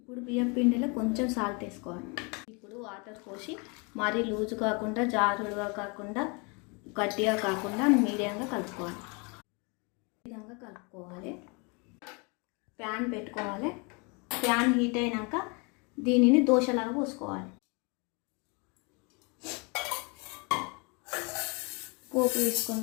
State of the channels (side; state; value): right; quieter; 31.6 dB